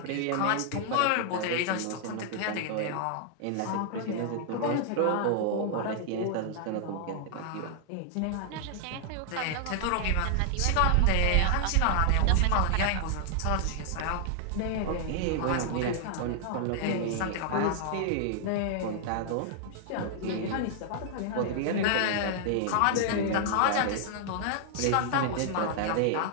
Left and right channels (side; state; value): both; different; correlation 0.00